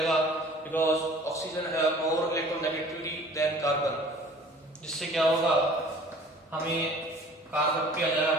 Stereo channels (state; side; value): normal; both; correlation 0.49